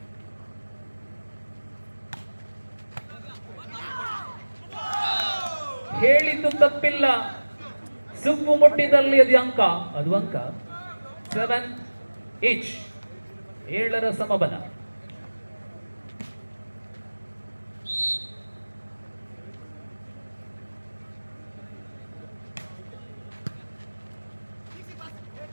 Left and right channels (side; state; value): both; inverted; correlation -1.00